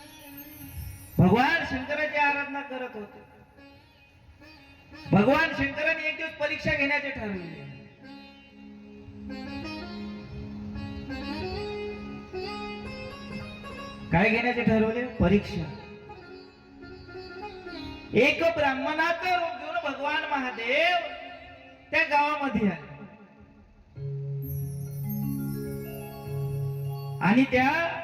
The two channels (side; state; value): both; identical; correlation 1.00